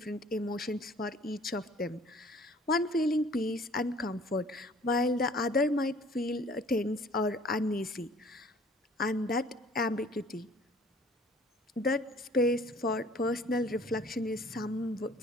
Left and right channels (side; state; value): both; normal; correlation 0.53